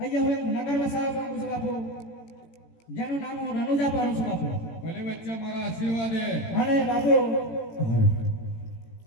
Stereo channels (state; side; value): late; right; 18 ms